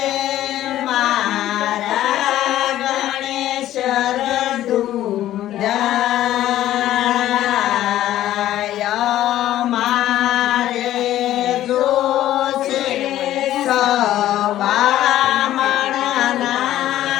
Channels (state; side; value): quieter; right; 13.3 dB